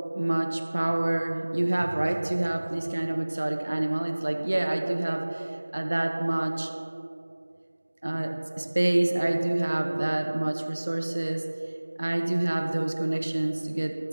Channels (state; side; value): inverted; both; correlation -1.00